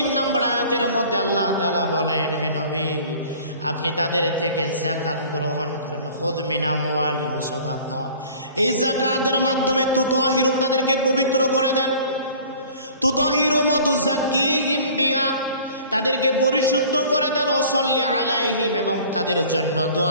নম্বর আয়াতের মধ্যে আল্লাহ তাআলা বলেন, হে নবী আপনি তাদের থেকে যাকাত গ্রহণ করেন। খুয মিন আমওয়ালিহিম সাদাকা, এই যাকাতের মাধ্যমে তুতাহিরুম, তাদেরকে পবিত্র করে দেন। তুতাহিরুম ওয়া তুযাক্কিহিম বিহা, তাদেরকে পরিশুদ্ধ করে দেন। ওয়া সাল্লি আলাইহিম, এবং তাদের জন্য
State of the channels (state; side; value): inverted; both; correlation -0.47